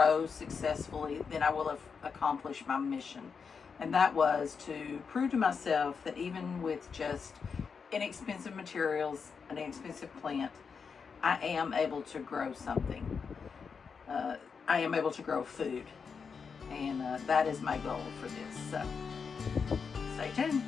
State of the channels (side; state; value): right; quieter; 5.8 dB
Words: successfully, then I will have accomplished my mission. And that was to prove to myself that even with just inexpensive materials, an inexpensive plant, I am able to grow something. I am able to grow food, and that is my goal for this. So stay tuned.